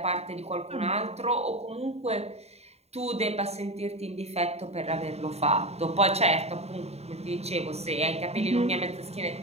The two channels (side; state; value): left; late; 0.30 ms